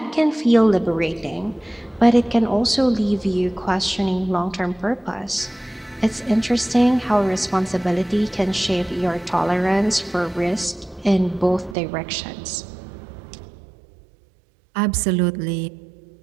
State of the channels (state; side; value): drops out; left; at 11.8 s